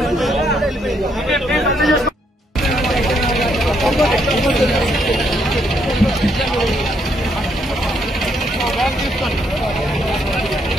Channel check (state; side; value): normal; both; correlation 0.74